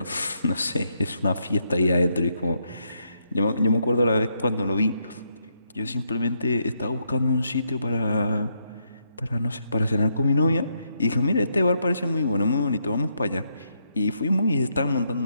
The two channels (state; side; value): inverted; both; correlation -0.78